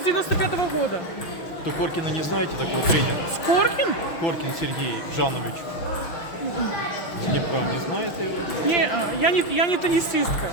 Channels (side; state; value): right; late; 5.8 ms